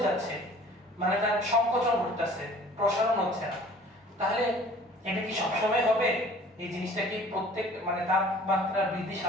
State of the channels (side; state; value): both; normal; correlation 0.49